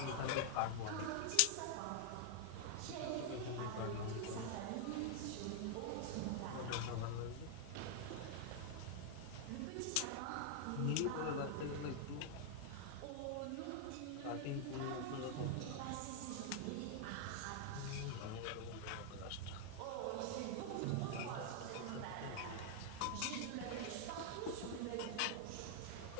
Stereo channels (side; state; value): both; different; correlation 0.00